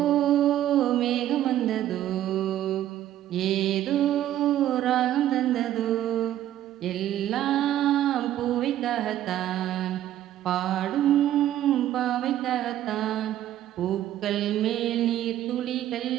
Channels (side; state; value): left; quieter; 12.4 dB